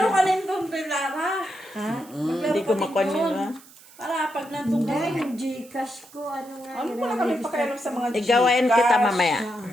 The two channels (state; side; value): noise; right; hiss, 23 dB below the sound